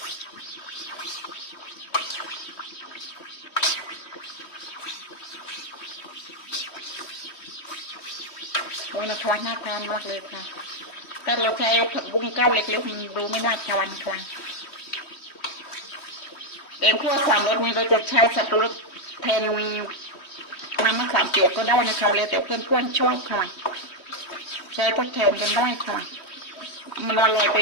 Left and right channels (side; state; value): right; late; 3.1 ms